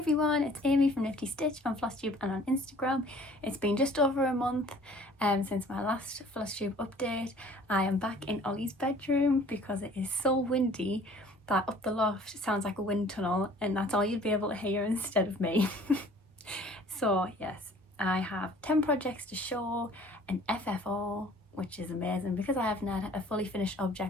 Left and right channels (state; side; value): normal; both; correlation 0.53